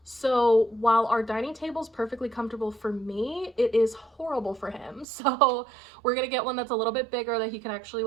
So while our dining table is perfectly comfortable for me, it is horrible for him. So we're gonna get one that's a little bit bigger that he can actually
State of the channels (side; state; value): left; drops out; at 5.1 s